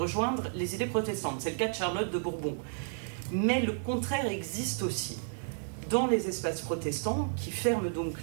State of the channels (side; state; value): left; silent; digital silence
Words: les idées protestantes. C'est le cas de Charlotte de Bourbon. Mais le contraire existe aussi. Dans les espaces protestants, qui ferment donc